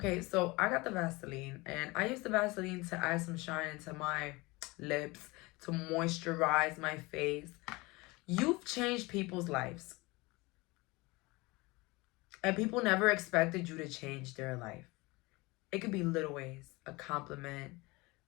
so I got the Vaseline, and I use the Vaseline to add some shine into my lips, to moisturize my face. You've changed people's lives, and people never expected you to change their life. It could be little ways: a compliment,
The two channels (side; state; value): right; quieter; 23.7 dB